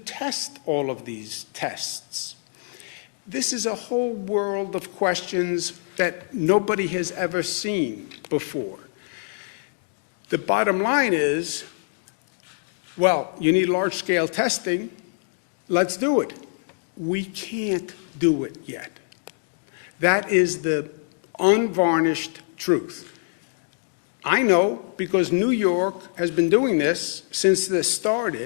all of these tests? This is a whole world of questions that nobody has ever seen before. The bottom line is, well, you need large-scale testing. Let's do it. We can't do it yet. That is the unvarnished truth. I know because New York has been doing this since this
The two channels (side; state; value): right; silent; digital silence